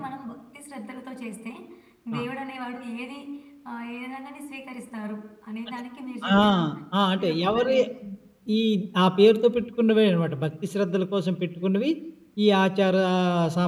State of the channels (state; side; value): identical; both; correlation 1.00